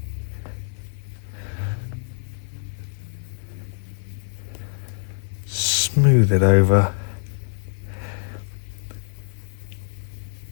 smooth it over,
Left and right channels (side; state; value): right; silent; digital silence